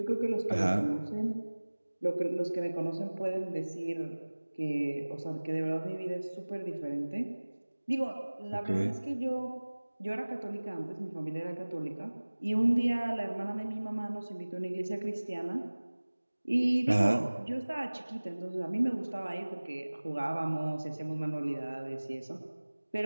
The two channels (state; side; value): inverted; both; correlation -1.00